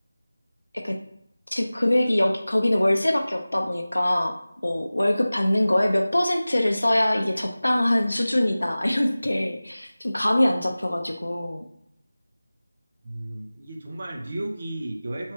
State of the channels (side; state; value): both; inverted; correlation -0.98